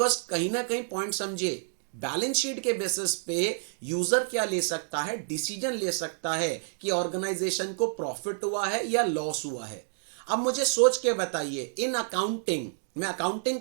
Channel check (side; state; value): left; silent; digital silence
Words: कहीं ना कहीं पॉइंट समझे, बैलेंस शीट के बेसिस पे यूजर क्या ले सकता है, डिसीजन ले सकता है कि ऑर्गेनाइजेशन को प्रॉफिट हुआ है या लॉस हुआ है। अब मुझे सोच के बताइए, इन अकाउंटिंग, मैं अकाउंटिंग